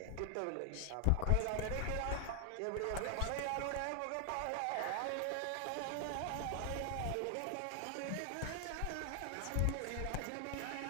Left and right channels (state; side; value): different; both; correlation 0.00